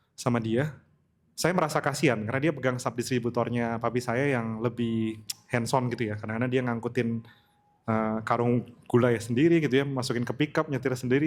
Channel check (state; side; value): identical; both; correlation 1.00